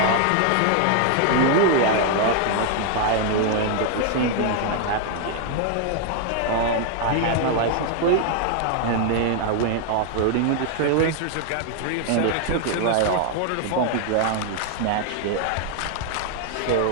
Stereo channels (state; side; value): different; both; correlation 0.00